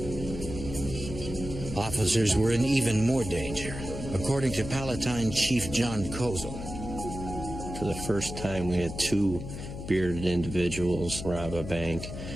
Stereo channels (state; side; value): noise; left; hum, 8 dB below the sound